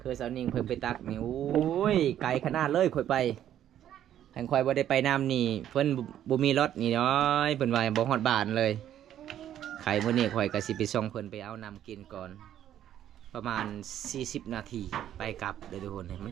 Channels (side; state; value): left; quieter; 11.1 dB